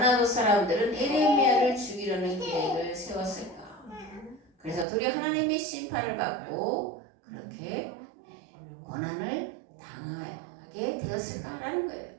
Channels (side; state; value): left; drops out; at 4.9 s